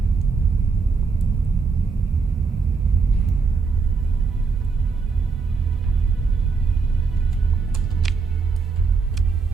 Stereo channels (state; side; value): quieter; left; 4.8 dB